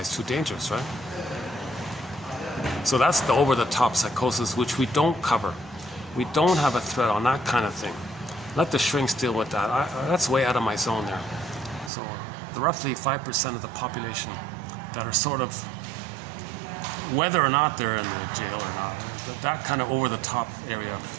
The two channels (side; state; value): left; drops out; at 11.9 s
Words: too dangerous, right? So that's the over-the-top psychosis, which we don't cover. We don't have a thread on that kind of thing. Let the shrinks deal with that. That's way out of my zone there. So the roughly 5% of the population that are sort of, whether or not they're in the jail or not, that kind of over-the-top area,